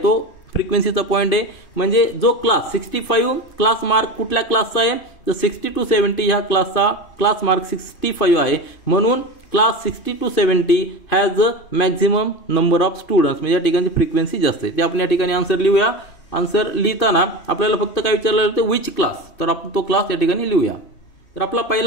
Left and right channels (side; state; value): right; late; 2.5 ms